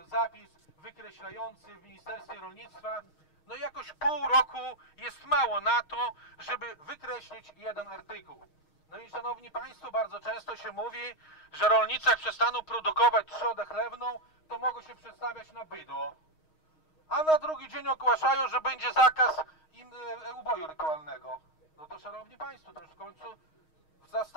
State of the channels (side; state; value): right; late; 6.4 ms